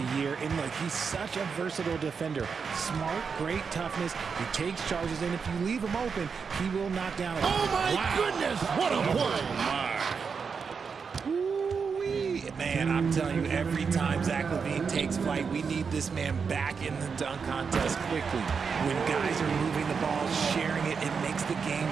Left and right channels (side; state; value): left; quieter; 5.8 dB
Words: year, and look, he's such a versatile defender. Smart, great toughness. He takes charges, and if you leave him open, he will knock down. Oh my goodness! What a play! Man, I'm telling you, every time Zach Levine takes flight, we need this man back in the dunk contest quickly. When guys are moving the ball, sharing it, it makes the